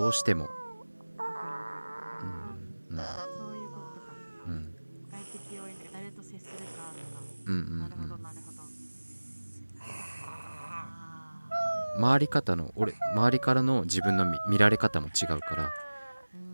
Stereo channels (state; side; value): inverted; both; correlation -1.00